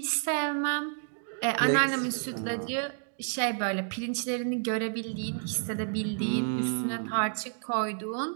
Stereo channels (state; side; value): silent; left; digital silence